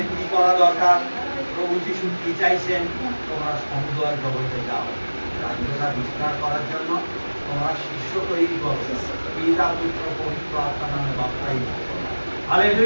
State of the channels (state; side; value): inverted; both; correlation -1.00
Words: কি করা দরকার, প্রভু যিশু কি চাইছেন, তোমরা সমুদ্র জগতে যাও, রাজ্যটা বিস্তার করার জন্য তোমরা শিষ্য তৈরি করো, পিতা পুত্র পবিত্র আত্মা নামে বাপ্তাইজ।